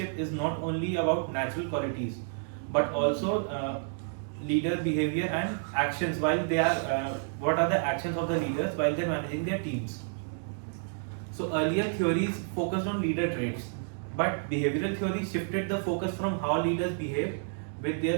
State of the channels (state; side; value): silent; left; digital silence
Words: is not only about natural qualities but also leader behavior and actions while they are what are the actions of the leaders while they're managing their teams. So earlier theories focused on leader traits, but behavioral theory shifted the focus from how leaders behave with